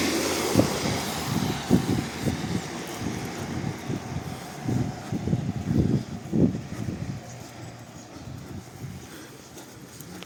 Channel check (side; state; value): both; identical; correlation 1.00